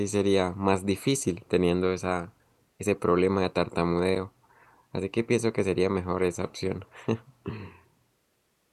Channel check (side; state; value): both; identical; correlation 1.00